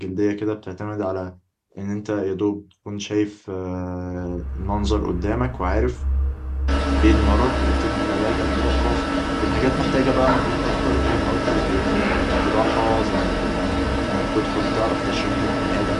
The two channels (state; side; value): identical; both; correlation 1.00